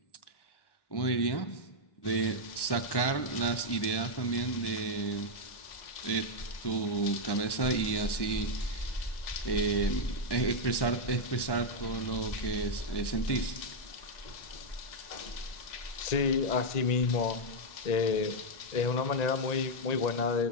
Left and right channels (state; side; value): late; right; 1.1 ms